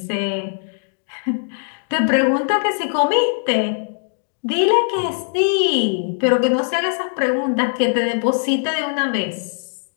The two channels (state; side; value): silent; right; digital silence